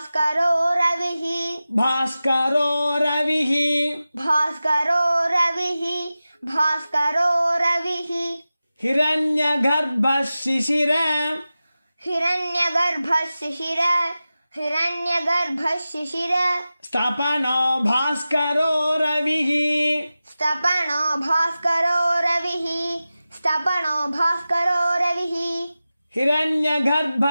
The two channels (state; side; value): inverted; both; correlation -0.95